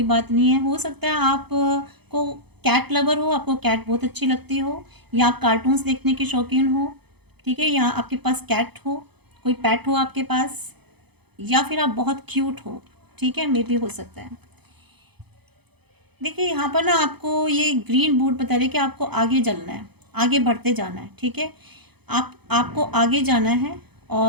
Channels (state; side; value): late; left; 0.98 ms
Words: बात नहीं है। हो सकता है आप को कैट लवर हो, आपको कैट बहुत अच्छी लगती हो, या आप कार्टून्स देखने के शौकीन हो, ठीक है, या आपके पास कैट हो, कोई पेट हो आपके पास, या फिर आप बहुत क्यूट हो, ठीक है, मे भी हो सकता है। देखिए यहाँ पर ना आपको ये ग्रीन बूट बता रहे कि आपको आगे चलना है, आगे बढ़ते जाना है, ठीक है, आपको आगे जाना है